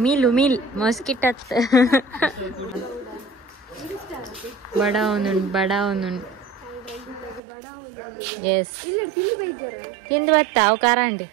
ಉಮಿಲ್ ಮಸ್ಕಿಟ್ ಬಡವನು ಎಸ್ ತಿಂದು ಬತ್ತಾ ಅವು ಕಾರಂಡಿ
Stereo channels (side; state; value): left; drops out; at 7.4 s